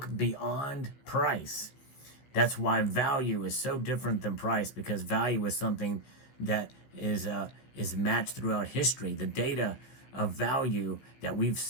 beyond price. That's why value is so different than price, because value is something that is matched throughout history. The data of value that we've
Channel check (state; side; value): late; right; 15 ms